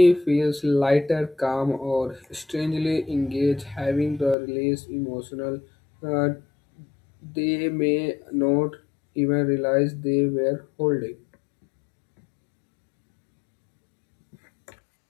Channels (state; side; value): drops out; right; at 4.4 s